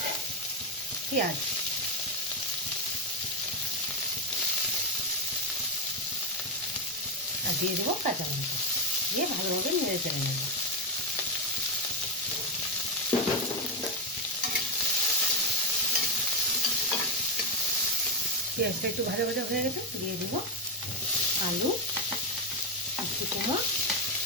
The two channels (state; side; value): normal; both; correlation 0.08